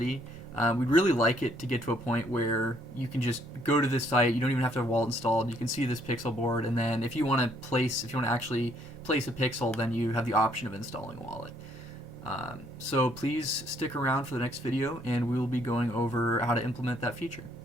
We'd really like it to get to a point where you can just go to this site, you don't even have to have a wallet installed, you can see this pixel board, and then if you want to actually place a pixel, then you have the option of installing a wallet. So please stick around for the next video, and we will be going over how to implement that feature.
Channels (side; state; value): both; normal; correlation 0.67